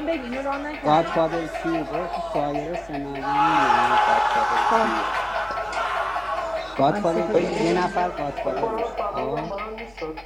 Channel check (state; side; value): noise; right; hum, 27 dB below the sound